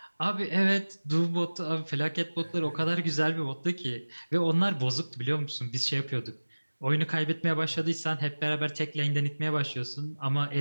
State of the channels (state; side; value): inverted; both; correlation -1.00